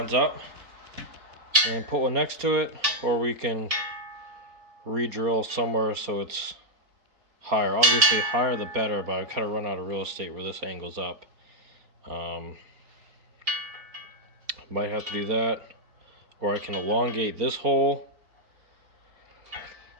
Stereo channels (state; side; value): late; left; 4.3 ms